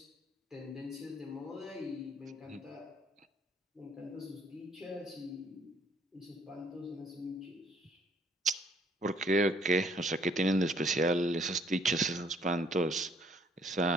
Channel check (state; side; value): normal; both; correlation 0.63